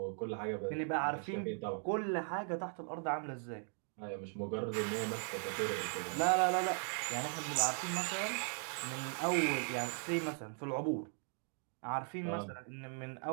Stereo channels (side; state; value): left; silent; 52 dB below the other